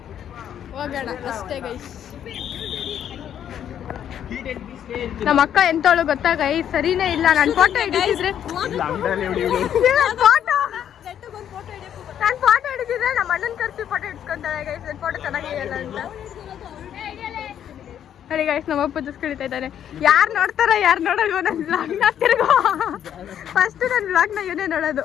ಹೋಗೋಣ ಅಷ್ಟೇ ಗೈಸ್. ನಮ್ಮ ಅಕ್ಕ ಎಂತವಳು ಗೊತ್ತಾ ಗೈಸ್, ಸರಿನೇ ಇಲ್ಲ. ನಾನು ಫೋಟೋ ಹಿಡಿಸಿದ್ರೆ ನಮ್ಮ ಅಣ್ಣನ ಕರ್ಸಿ ಫೋಟೋ ಹಿಡ್ಸ್ಕೊಂತಾಳೆ ಗೈಸ್. ನನ್ನ ಫೋಟೋ ಚೆನ್ನಾಗಿರಲ್ಲ ಅಂತ ನೋಡಿ ಗೈಸ್. ನಮ್ಮ ಅಪ್ಪ ಜಸ್ಕಿಳಿತಾ ಇದ್ದಾನೆ. ಯಾರು ನೋಡ್ತಾರ ಯಾರು ನೋಡಲ್ವ ನನ್ನ ಬ್ಲಾಗ್ನ? ತಿರ್ಗೋ ಫಸ್ಟ್ ನನ್ನ ಬ್ಲಾಗ್ನ ಇವನೇ ನೋಡೋದು,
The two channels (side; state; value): right; quieter; 9.7 dB